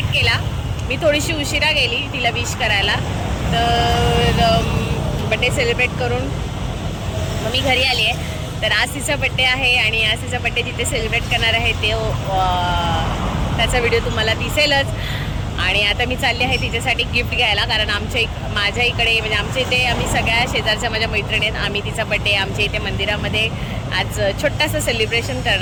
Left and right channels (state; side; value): identical; both; correlation 1.00